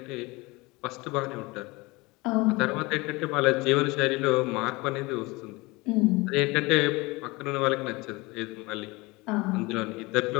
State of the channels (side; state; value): right; quieter; 23.5 dB